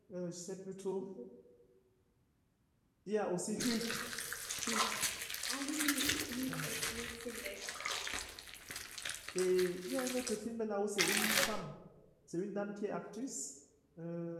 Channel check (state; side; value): identical; both; correlation 1.00